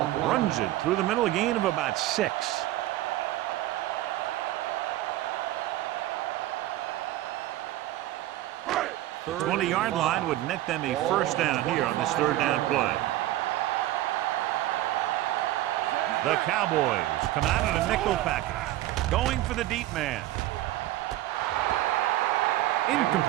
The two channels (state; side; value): quieter; left; 15.2 dB